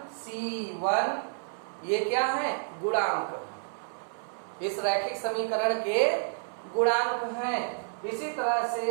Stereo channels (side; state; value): left; silent; 57 dB below the other